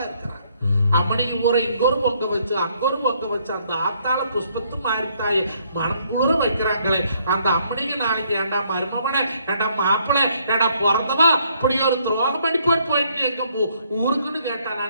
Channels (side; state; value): both; inverted; correlation -0.68